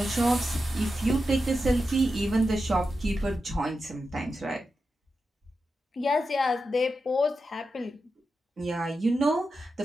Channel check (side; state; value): both; normal; correlation 0.89